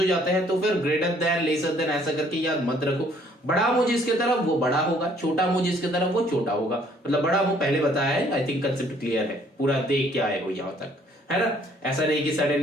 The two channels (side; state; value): both; normal; correlation 0.62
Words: जाते हैं, तो फिर ग्रेटर देन लेसर देन ऐसा करके याद मत रखो। बड़ा मुंह जिसके तरफ वो बड़ा होगा, छोटा मुंह जिसके तरफ वो छोटा होगा, मतलब बड़ा मुंह पहले बताया है, आई थिंक कंसेप्ट क्लियर है, पूरा देख के आए हो यहाँ तक। है ना। ऐसा नहीं कि